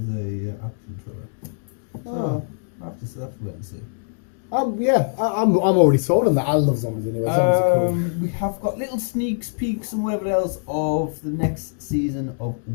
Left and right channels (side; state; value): right; silent; digital silence